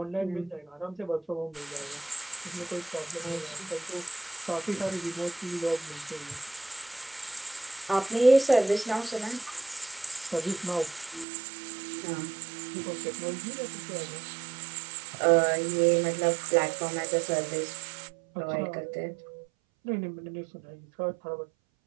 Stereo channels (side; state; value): left; drops out; at 11.2 s